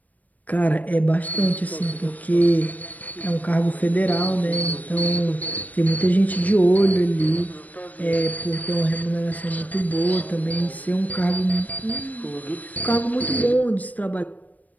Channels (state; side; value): late; right; 0.076 ms